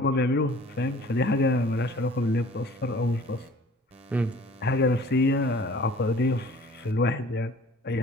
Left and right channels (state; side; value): normal; both; correlation 0.49